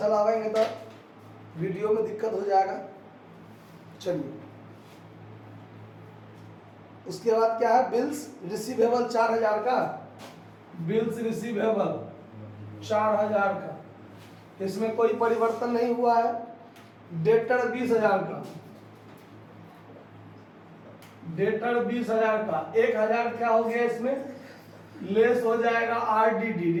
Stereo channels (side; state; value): both; identical; correlation 1.00